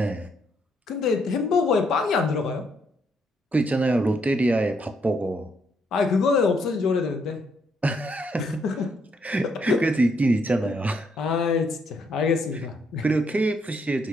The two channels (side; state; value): both; normal; correlation 0.74